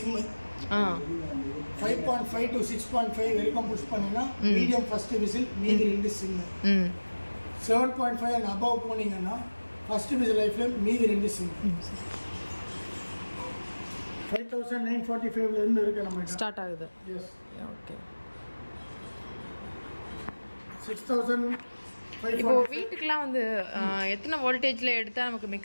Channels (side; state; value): both; inverted; correlation -1.00